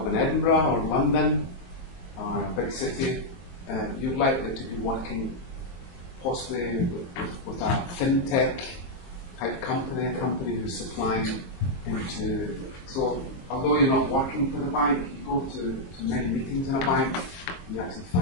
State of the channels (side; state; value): right; late; 22 ms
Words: in Edinburgh or London or a big city, you're likely to be working possibly with a fintech type company, a company who's supplying into. So although you're not working for the bank, you go to many meetings in a bank, you actually